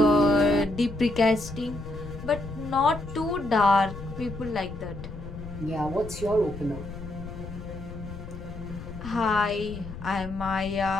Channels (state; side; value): noise; left; rumble, 11 dB below the sound